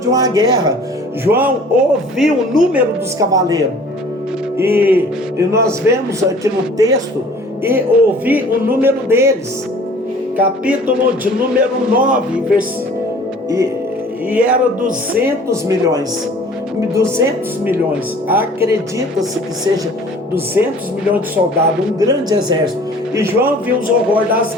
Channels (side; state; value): both; normal; correlation 0.49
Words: uma guerra. João ouviu o número dos cavaleiros, e nós vemos aqui no texto, e ouvi o número deles, capítulo de número 9, e era 200 milhões. 200 milhões, acredita-se que seja 200 milhões de soldados, um grande exército. E João viu os horrores das